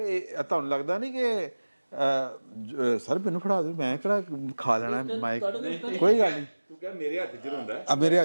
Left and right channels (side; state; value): both; inverted; correlation -1.00